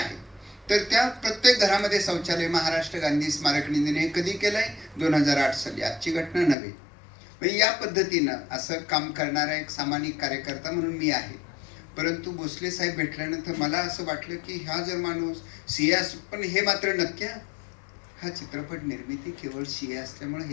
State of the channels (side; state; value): right; drops out; at 6.6 s